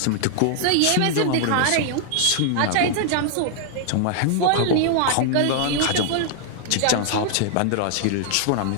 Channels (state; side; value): different; both; correlation -0.01